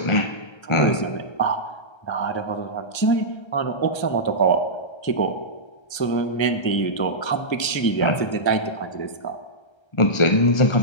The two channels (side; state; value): right; late; 1.3 ms